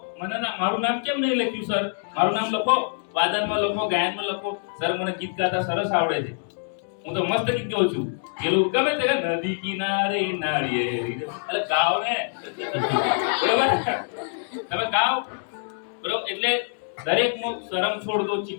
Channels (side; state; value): right; silent; digital silence